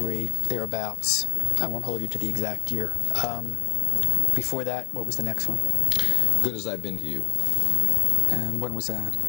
thereabouts. I won't hold you to the exact year. Before that, what was the next one? Good As I've Been to You. And when was that?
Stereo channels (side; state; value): right; silent; digital silence